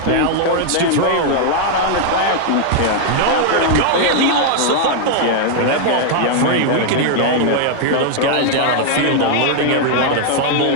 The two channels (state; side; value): different; both; correlation 0.00